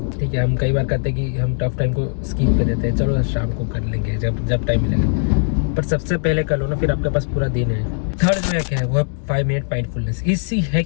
ठीक है। हम कई बार कहते हैं कि हम टफ टाइम को स्किप कर देते हैं, चलो शाम को कर लेंगे जब टाइम मिलेगा, पर सबसे पहले कर लो ना, फिर आपके पास पूरा दिन है। थर्ड जो हैक है वो है 5 मिनट माइंडफुलनेस। इसी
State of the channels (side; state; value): right; silent; digital silence